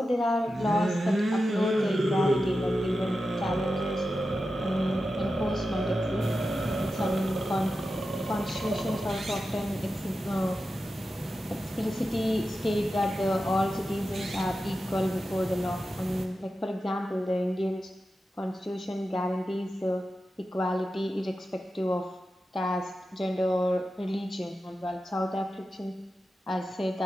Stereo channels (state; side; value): normal; both; correlation 0.91